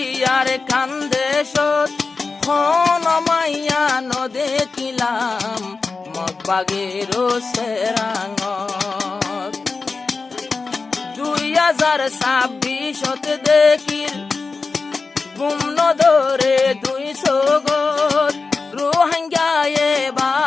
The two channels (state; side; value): quieter; right; 4.3 dB